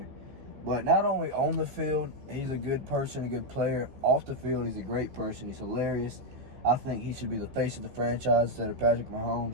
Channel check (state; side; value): late; left; 15 ms